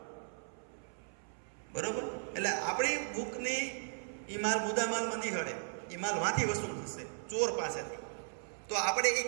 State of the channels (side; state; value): left; silent; 53 dB below the other